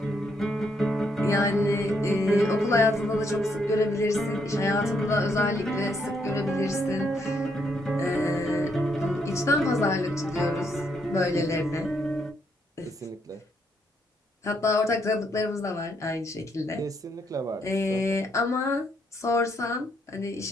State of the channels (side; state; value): both; normal; correlation 0.75